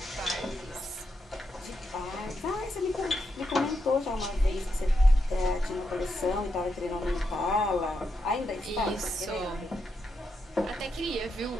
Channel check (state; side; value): normal; both; correlation 0.83